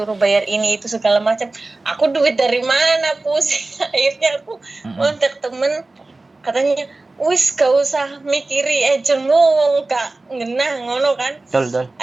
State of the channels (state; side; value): quieter; left; 3.1 dB